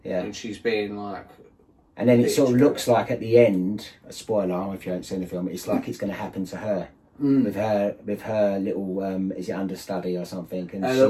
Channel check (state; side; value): identical; both; correlation 1.00